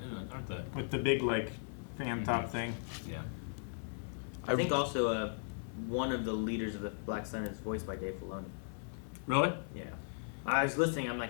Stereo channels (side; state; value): right; silent; digital silence